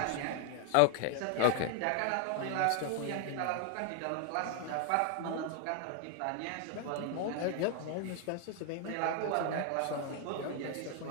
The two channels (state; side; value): different; both; correlation 0.00